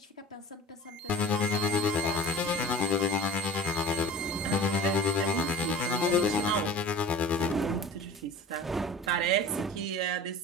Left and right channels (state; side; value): normal; both; correlation 0.39